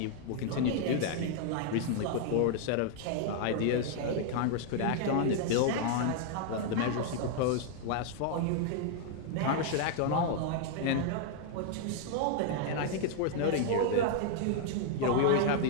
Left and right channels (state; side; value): different; both; correlation 0.00